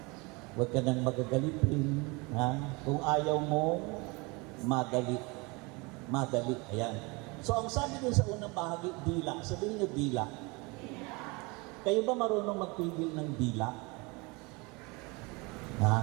Huwag ka nang magagalitin. Kung ayaw mo, madali. Madali. Ayan. So, ang sabi dun sa unang bahagi, dila. Sabihin niyo, dila. Kayo ba marunong magpigil ng dila?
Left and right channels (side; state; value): left; quieter; 27.1 dB